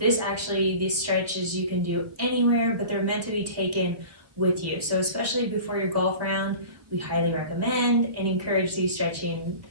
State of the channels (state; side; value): late; left; 1.4 ms